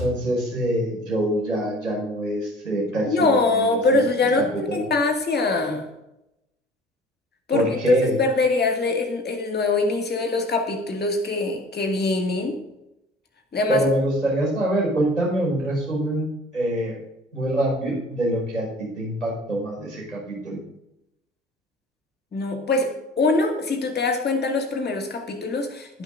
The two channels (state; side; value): normal; both; correlation 0.45